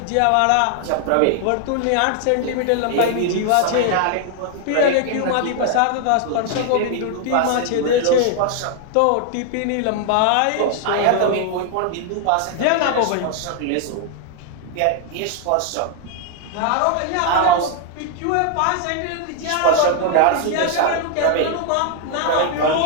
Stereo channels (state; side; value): different; both; correlation 0.00